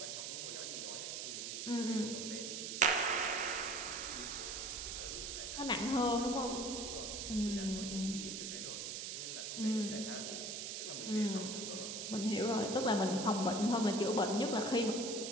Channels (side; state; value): right; noise; hiss, 5 dB below the sound